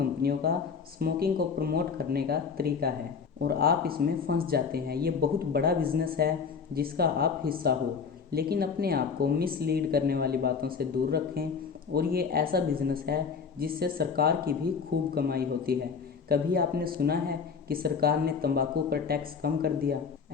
का स्मोकिंग को प्रमोट करने का तरीका है और आप इसमें फंस जाते हैं। ये बहुत बड़ा बिजनेस है जिसका आप हिस्सा हो, लेकिन अपने आप को मिसलीड करने वाली बातों से दूर रखें। और ये ऐसा बिजनेस है जिससे सरकार की भी खूब कमाई होती है। कभी आपने सुना है कि सरकार ने तंबाकू पर टैक्स कम कर दिया?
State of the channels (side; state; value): right; quieter; 5.9 dB